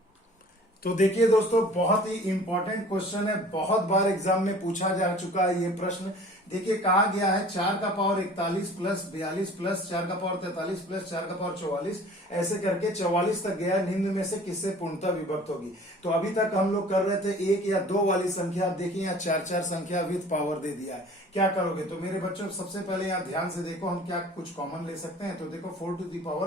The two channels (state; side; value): normal; both; correlation 0.47